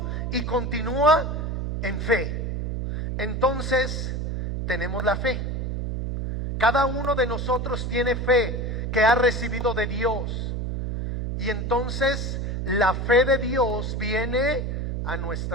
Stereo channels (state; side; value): noise; right; hum, 2 dB below the sound